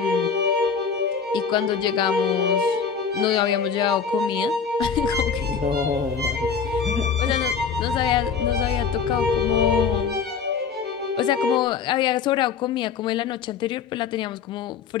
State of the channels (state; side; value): quieter; right; 6.2 dB